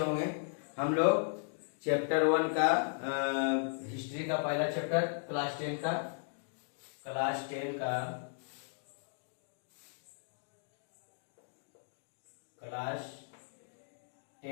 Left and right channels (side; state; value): right; silent; digital silence